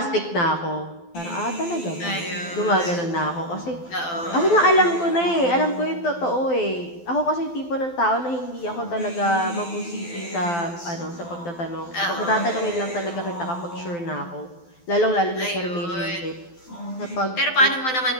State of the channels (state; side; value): late; right; 12 ms